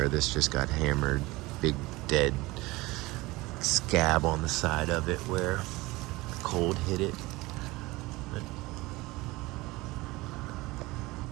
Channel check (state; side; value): quieter; left; 21.1 dB